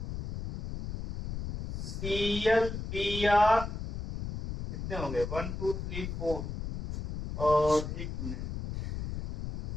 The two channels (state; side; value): noise; left; rumble, 6 dB below the sound